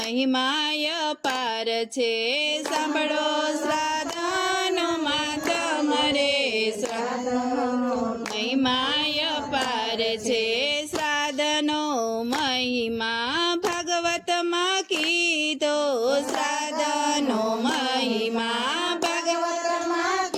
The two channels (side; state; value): both; identical; correlation 1.00